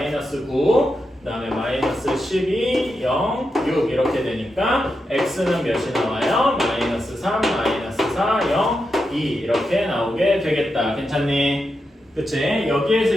9, 그 다음에 마이너스 12, 0, 6 이렇게 되니까 x는 몇이 나와요? 마이너스 3, 마이너스 4, 0, 2 이렇게 나오게 되겠다. 괜찮니? 그치? 여기에서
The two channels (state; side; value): normal; both; correlation 0.87